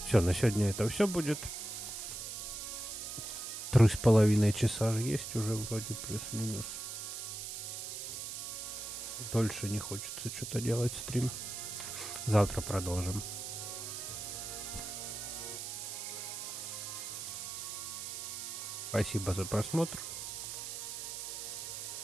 Все, на сегодня это все будет. 3,5 часа же есть уже вроде, плюс-минус. Дольше не хочется что-то делать стрим. Завтра продолжим. Спасибо за просмотр.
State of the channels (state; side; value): noise; right; hiss, 6 dB below the sound